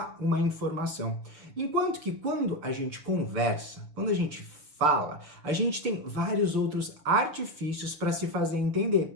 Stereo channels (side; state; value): left; late; 6.5 ms